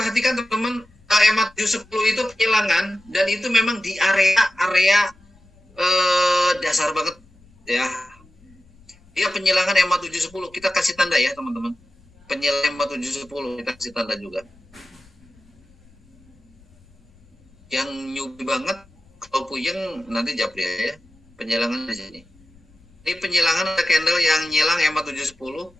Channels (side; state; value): left; noise; rumble, 29 dB below the sound